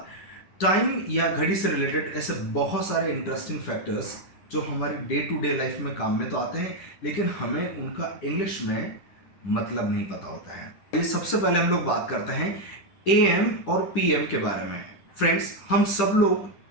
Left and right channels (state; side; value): late; right; 10 ms